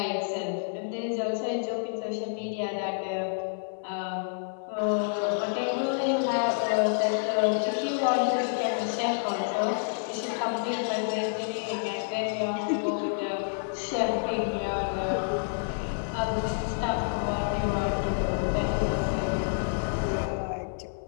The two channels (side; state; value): right; silent; 59 dB below the other